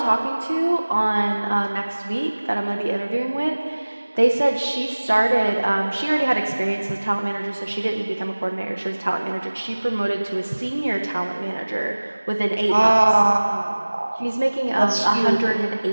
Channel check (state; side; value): inverted; both; correlation -1.00